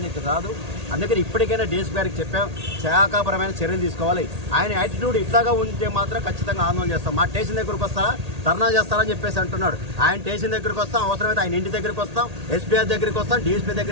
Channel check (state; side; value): late; left; 1.8 ms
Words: కాదు. అందుకని ఇప్పటికైనా డీఎస్పీ గారికి చెప్పాం, శాఖాపరమైన చర్యలు తీసుకోవాలి. ఆయన యాటిట్యూడ్ ఇట్లాగా ఉంటే మాత్రం ఖచ్చితంగా ఆందోళన చేస్తాం. మా స్టేషన్ దగ్గరకు వస్తారా, ధర్నా చేస్తారని చెప్పేసి అంటున్నాడు. ఆయన స్టేషన్ దగ్గరికి వస్తాం, అవసరమైతే ఆయన ఇంటి దగ్గరికి వస్తాం, ఎస్పీఆర్ దగ్గరికి వస్తాం, డీఎస్పీ